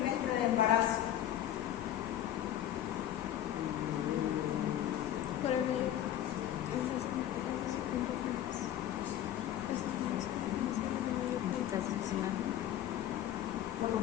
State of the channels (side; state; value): right; quieter; 11.7 dB